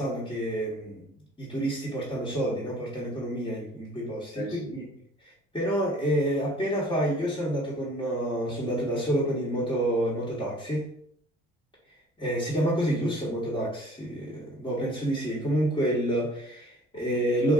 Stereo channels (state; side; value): normal; both; correlation 0.51